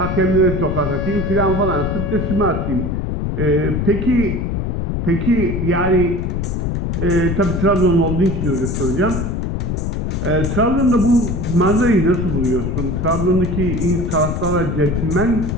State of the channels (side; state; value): left; noise; rumble, 1 dB below the sound